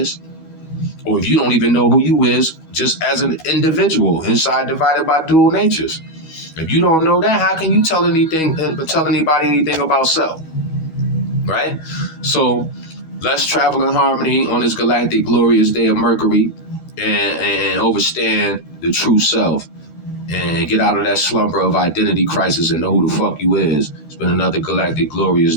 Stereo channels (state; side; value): late; right; 12 ms